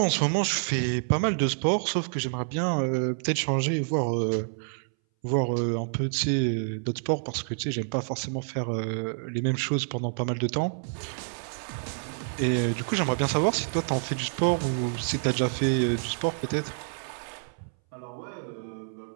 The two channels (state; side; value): silent; left; 59 dB below the other